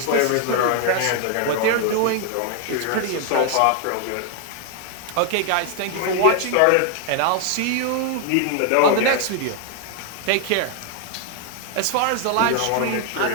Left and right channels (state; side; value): different; both; correlation 0.00